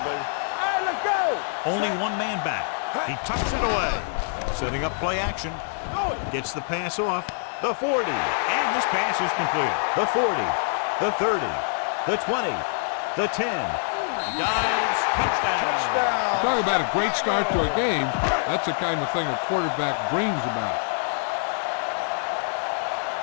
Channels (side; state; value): right; silent; 57 dB below the other